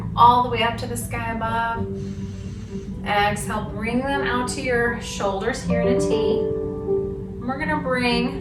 all the way up to the sky above. Exhale, bring them out to your shoulders here in a T. And we're gonna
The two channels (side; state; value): both; identical; correlation 1.00